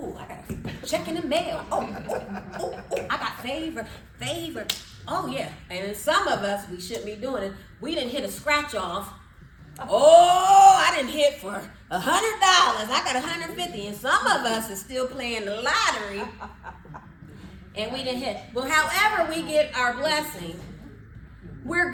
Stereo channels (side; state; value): both; identical; correlation 1.00